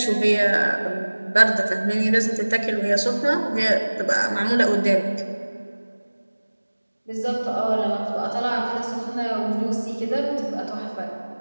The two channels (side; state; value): both; inverted; correlation -1.00